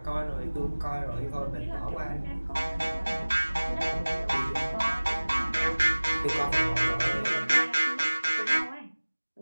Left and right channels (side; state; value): both; inverted; correlation -1.00